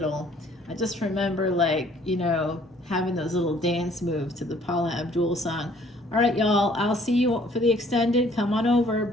I just remember, like, you know, having those little dance moves to the Paula Abdul song. All right, y'all, I'll see you for the extended. Come on over.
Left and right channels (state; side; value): normal; both; correlation 0.59